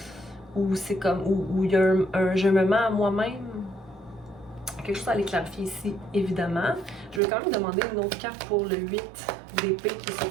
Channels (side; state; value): left; drops out; at 7.2 s